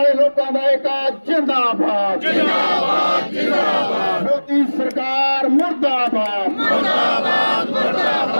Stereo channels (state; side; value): inverted; both; correlation -1.00